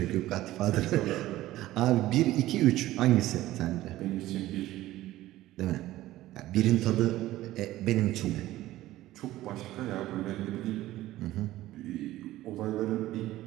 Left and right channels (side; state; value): left; quieter; 15.7 dB